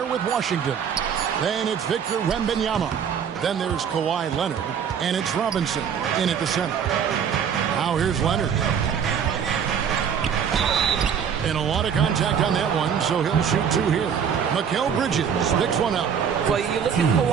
with Washington. Then it's Victor Wembanyama. Then there's Kawhi Leonard. And it's Robinson in at the center. Now here's Leonard. And a lot of contact on that one, so he'll shoot two here. Mikal Bridges picks one up. Well, you look at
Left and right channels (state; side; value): quieter; left; 7.6 dB